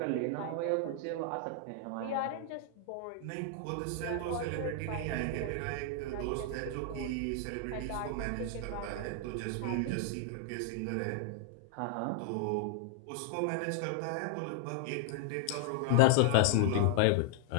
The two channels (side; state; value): both; different; correlation 0.00